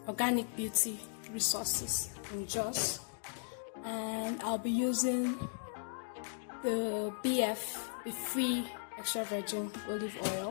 Beauty Resources in Jos, and I'll be using the Be Free extra virgin olive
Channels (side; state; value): right; silent; digital silence